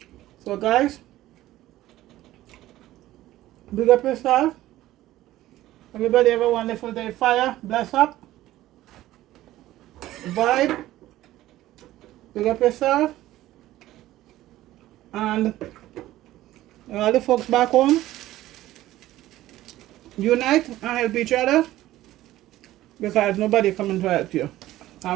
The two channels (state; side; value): quieter; left; 15.2 dB